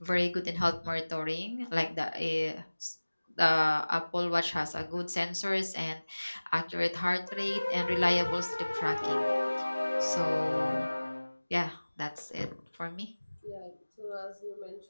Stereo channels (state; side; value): inverted; both; correlation -1.00